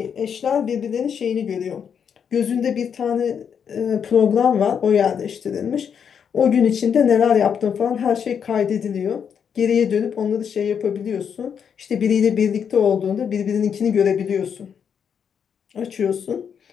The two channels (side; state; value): right; quieter; 7.4 dB